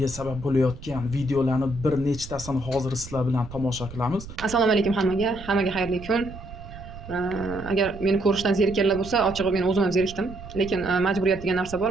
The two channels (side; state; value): right; noise; rumble, 14 dB below the sound